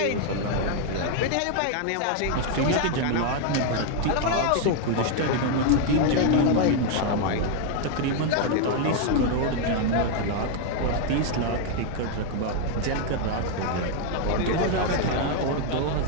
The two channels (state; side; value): different; both; correlation 0.00